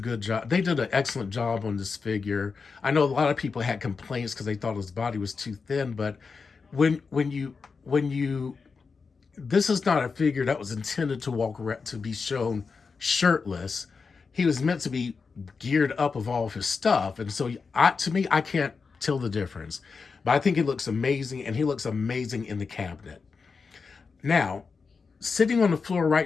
good job. They did an excellent job on this figure. I know a lot of people had complaints because they thought his body was too thin, but when you this is not a figure that was intended to walk around to be shown shirtless. He was meant to be geared up of all of his stuff, and so to me, I can't tell the difference. But I think he looks amazing, and he looks amazing in the cabinet. Now, sitting on the floor right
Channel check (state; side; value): quieter; right; 5.0 dB